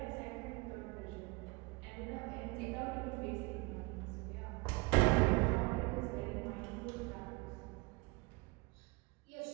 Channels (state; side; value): quieter; left; 26.0 dB